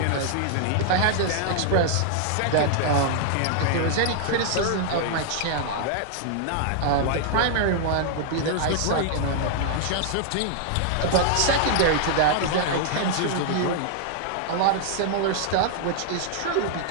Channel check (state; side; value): different; both; correlation -0.01